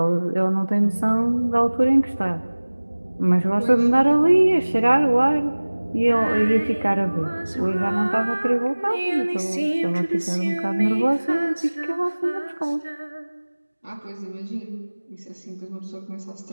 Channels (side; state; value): both; inverted; correlation -1.00